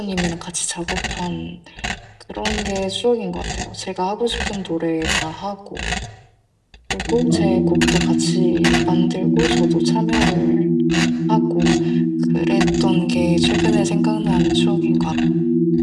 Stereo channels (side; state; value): both; identical; correlation 1.00